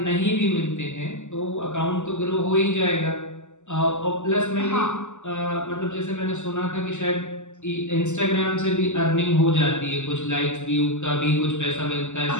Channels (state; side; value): late; right; 0.84 ms